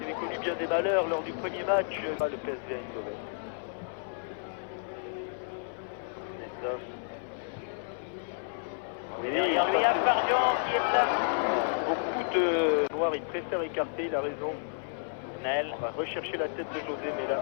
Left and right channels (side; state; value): right; silent; 56 dB below the other